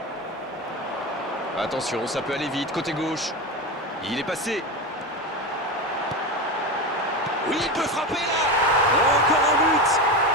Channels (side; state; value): both; normal; correlation 0.21